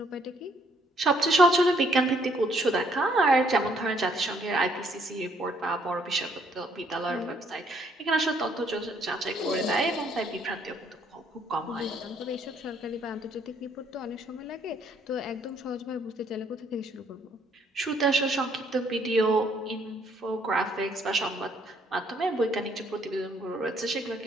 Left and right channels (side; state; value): both; normal; correlation 0.67